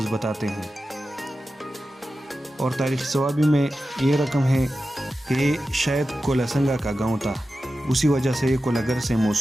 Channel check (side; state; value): both; normal; correlation 0.93